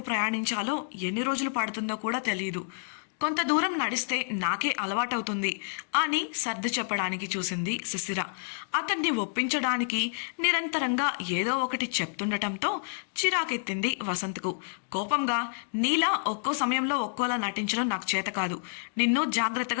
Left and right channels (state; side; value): silent; right; digital silence